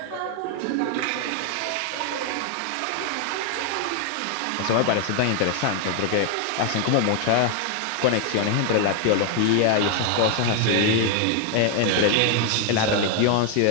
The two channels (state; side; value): different; both; correlation 0.00